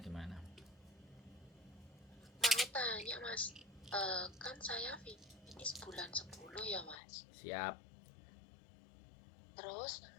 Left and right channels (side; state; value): right; drops out; at 7.0 s